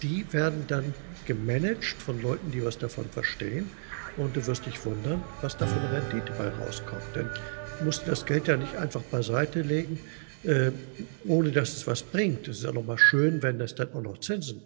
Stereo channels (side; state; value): left; silent; digital silence